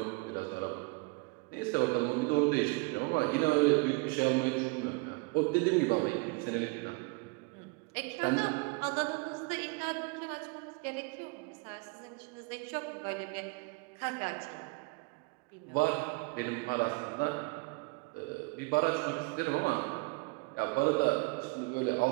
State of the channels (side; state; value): left; quieter; 29.4 dB